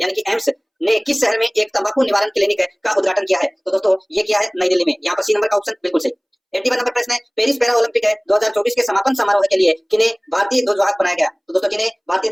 यानी कि एम्स ने किस शहर में एक तंबाकू निवारण क्लिनिक का उद्घाटन किया है? तो दोस्तों ये किया है नई दिल्ली में। यहाँ पर सी नंबर का ऑप्शन बिल्कुल सही। 81 नंबर प्रश्न है, पेरिस पैरा ओलंपिक 2024 के समापन समारोह के लिए किन्हें भारतीय ध्वजवाहक बनाया गया? तो दोस्तों किन्हें भारतीय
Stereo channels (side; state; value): both; identical; correlation 1.00